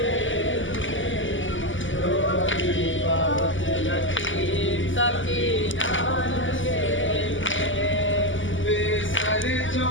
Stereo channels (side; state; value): right; late; 0.56 ms